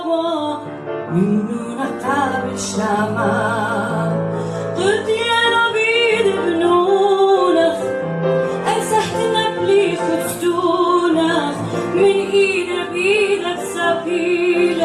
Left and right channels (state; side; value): identical; both; correlation 1.00